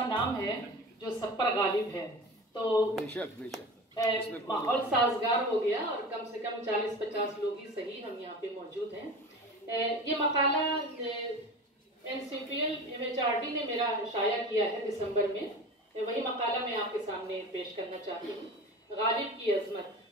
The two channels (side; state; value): both; normal; correlation 0.34